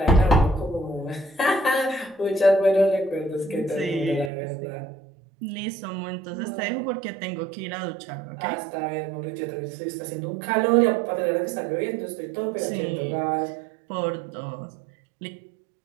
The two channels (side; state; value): left; drops out; at 4.3 s